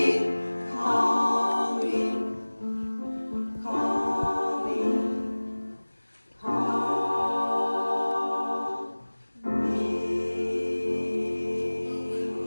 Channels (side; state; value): both; inverted; correlation -1.00